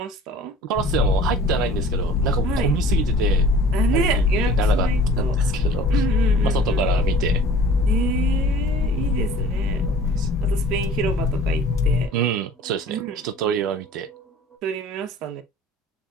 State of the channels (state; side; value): normal; both; correlation 0.46